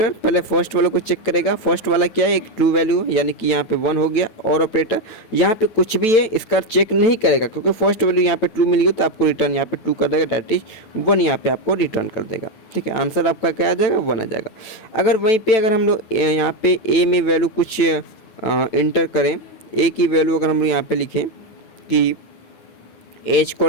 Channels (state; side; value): late; right; 9.0 ms